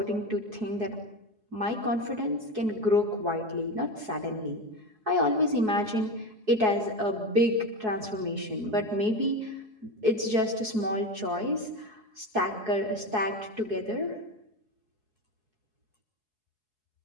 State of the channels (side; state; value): left; late; 4.7 ms